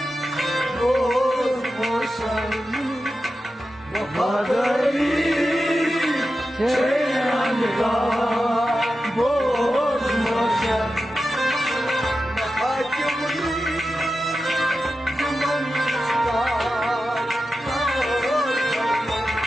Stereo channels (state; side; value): normal; both; correlation 0.92